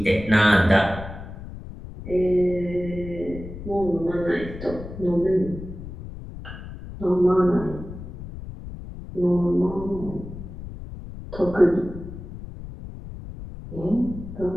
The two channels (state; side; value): noise; left; rumble, 11 dB below the sound